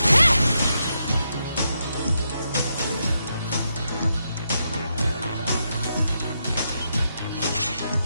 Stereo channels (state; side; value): inverted; both; correlation -0.82